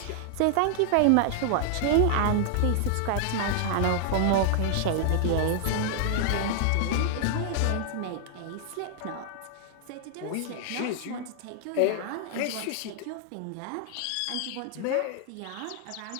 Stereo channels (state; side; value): different; both; correlation 0.00